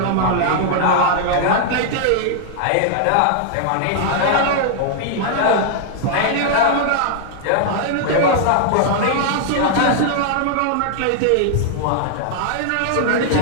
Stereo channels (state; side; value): different; both; correlation 0.00